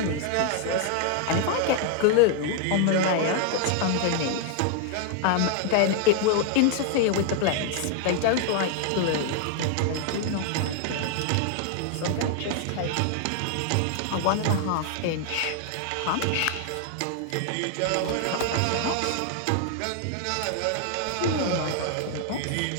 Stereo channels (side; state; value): both; different; correlation 0.00